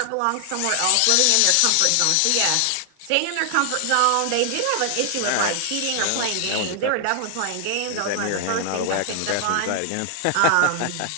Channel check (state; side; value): different; both; correlation 0.00